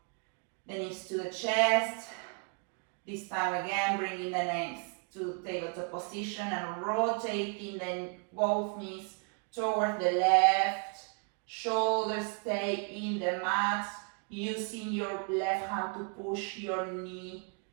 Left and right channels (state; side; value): quieter; left; 38.3 dB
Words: the knees to the chest. This time again, bringing the legs to tabletop position and rotating both knees towards the left. Shoulders stay in the mat. Using your left hand to push your knee,